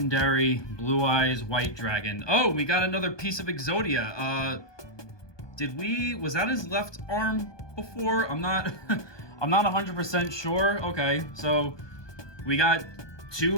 Blue Eyes White Dragon. Oh, we got another piece of Exodia. Was that his left arm before? I'm not I'm not 100% sure. Okay, so we got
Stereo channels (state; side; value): late; right; 1.2 ms